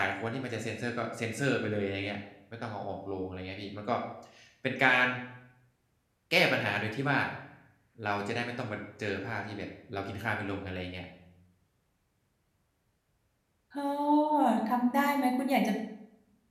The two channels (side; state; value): both; identical; correlation 1.00